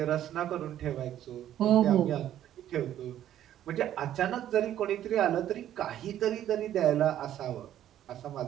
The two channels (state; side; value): quieter; left; 11.6 dB